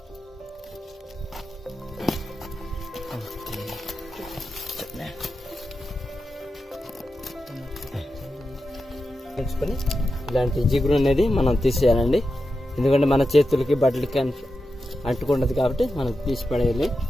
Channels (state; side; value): normal; both; correlation 0.90